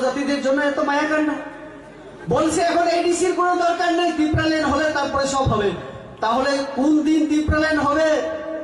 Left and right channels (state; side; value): identical; both; correlation 1.00